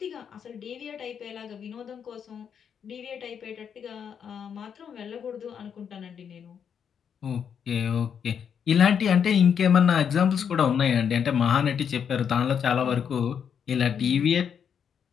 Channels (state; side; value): quieter; right; 7.6 dB